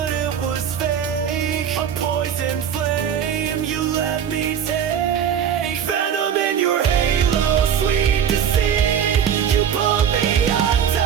it was fake, a poison flame you let me take. Venom in your halo, sweet deceit. You pulled me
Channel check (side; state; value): left; quieter; 8.5 dB